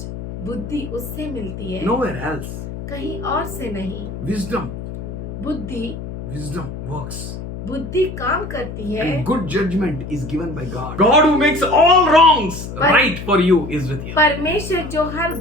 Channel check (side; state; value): left; noise; hum, 9 dB below the sound